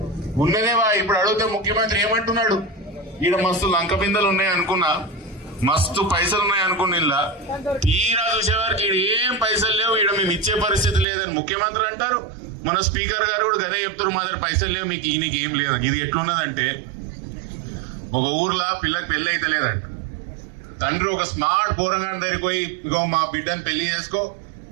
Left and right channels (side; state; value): left; drops out; at 11.1 s